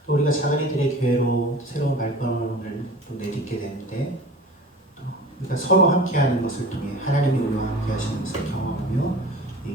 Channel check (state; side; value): normal; both; correlation 0.39